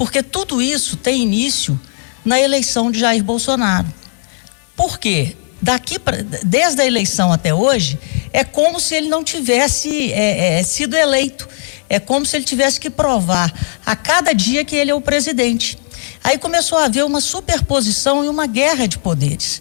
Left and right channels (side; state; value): right; silent; digital silence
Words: tudo isso tem início na eleição de Jair Bolsonaro. Por quê? Desde a eleição até hoje, é como se ele não tivesse sido eleito. É como se ele tivesse que provar a cada dia que ele é o presidente. Aí começou a haver uma superposição e uma guerra de poderes.